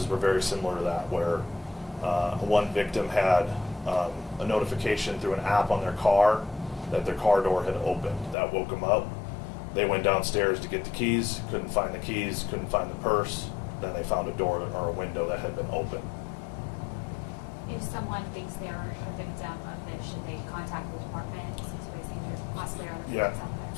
were very similar to that, where one victim had a notification through an app on their car that their car door had opened. That woke them up. They went downstairs to get the keys, couldn't find the keys, couldn't find the purse. Then they found a door or a window that had been open. If someone thinks they're a victim of this, should they contact the department since we think there's possibly other Yeah, victims out there?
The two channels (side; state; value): right; drops out; at 8.3 s